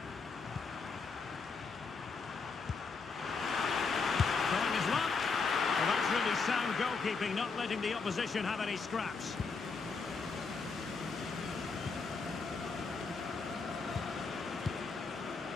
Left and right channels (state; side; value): quieter; right; 4.7 dB